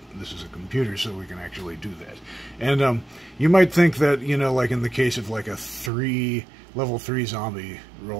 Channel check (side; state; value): left; drops out; at 5.9 s